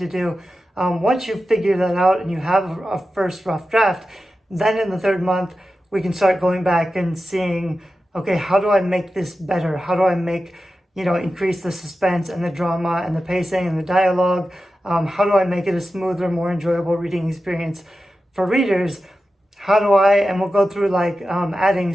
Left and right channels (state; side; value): normal; both; correlation 0.92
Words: do. Once you figure that out and you have a first rough draft, then in the third month, we can start going back and seeing, okay, how do I make this better? How do I increase the suspense and the drama and the pacing and the dialogue? How do I make it a smoother, more enjoyable reading experience for readers? And we'll go through adding